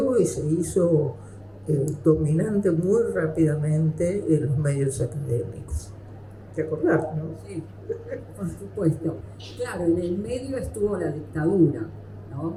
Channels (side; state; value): both; identical; correlation 1.00